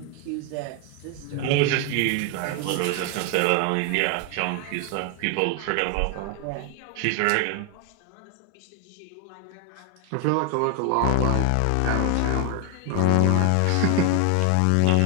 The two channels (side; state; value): both; different; correlation 0.01